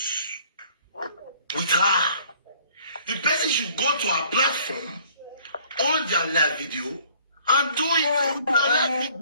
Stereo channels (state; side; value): inverted; both; correlation -0.57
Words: with her, the person should go to her platform on their live video and do it on their live